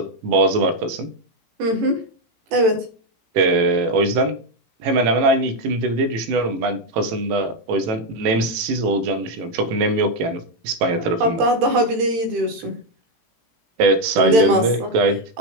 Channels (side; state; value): left; late; 18 ms